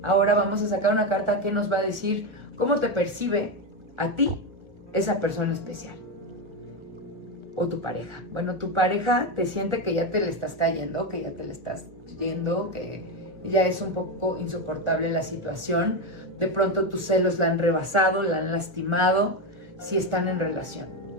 Ahora vamos a sacar una carta que nos va a decir cómo te percibe a ti esa persona especial o tu pareja. Bueno, tu pareja te siente que ya te le estás cayendo, que ya te le estás yendo, que ya es un poco insoportable la situación. De pronto tus celos la han rebasado, la han lastimado, si están en relación.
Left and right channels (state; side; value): late; left; 1.4 ms